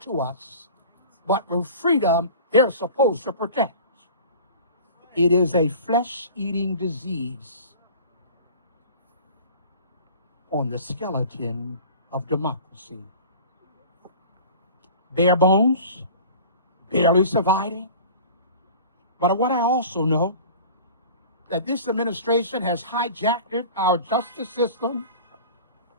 us, but with freedom they're supposed to protect. It is a flesh-eating disease on the skeleton of democracy. Bare bones, barely surviving. But what I also know, that this administration has hijacked our justice system.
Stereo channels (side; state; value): both; inverted; correlation -0.41